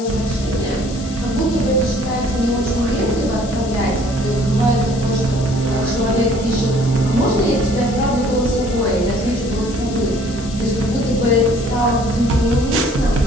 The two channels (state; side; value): noise; left; hiss, 15 dB below the sound